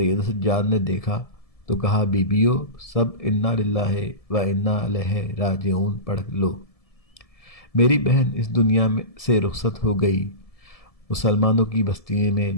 سجاد نے دیکھا تو کہا، بیبیو سب انا للہ و انا الیہ راجعون پڑھ لو، میری بہن اس دنیا سے رخصت ہو گئی۔ مسلمانوں کی بستی میں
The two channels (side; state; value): right; late; 1.7 ms